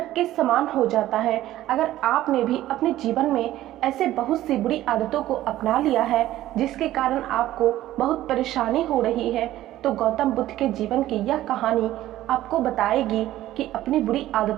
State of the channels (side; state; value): left; quieter; 14.4 dB